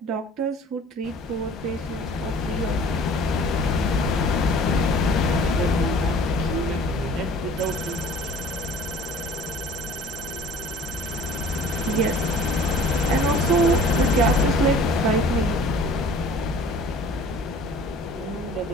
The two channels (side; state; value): both; normal; correlation 0.47